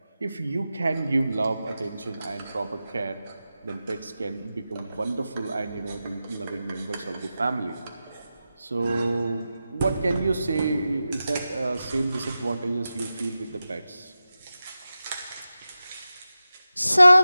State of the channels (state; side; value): inverted; both; correlation -0.93